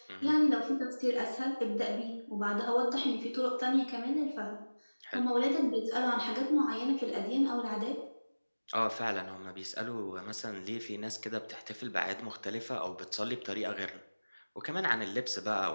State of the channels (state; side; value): inverted; both; correlation -1.00